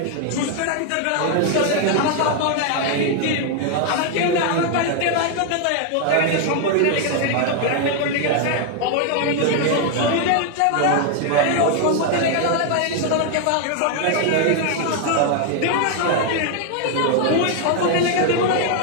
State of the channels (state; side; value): different; both; correlation 0.00